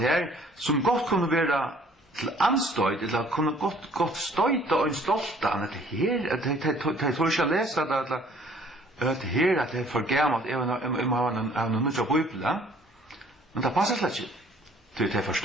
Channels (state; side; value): normal; both; correlation 0.57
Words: som godt kunne være til anstøyd, eller kunne godt støyta og en stolta, at her, jeg tror ikke jeg leser det, at her, at det for gammelt, jeg har noen nødt av Bibelen, men det passer slett ikke. de